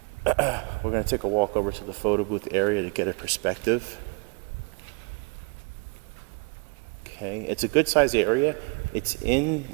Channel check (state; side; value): quieter; left; 32.0 dB